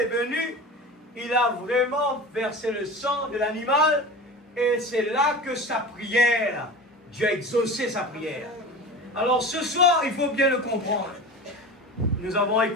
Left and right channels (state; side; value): normal; both; correlation 0.32